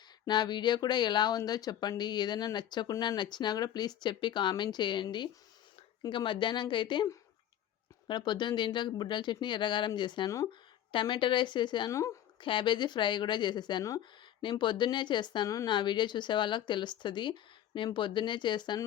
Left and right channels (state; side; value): quieter; right; 11.3 dB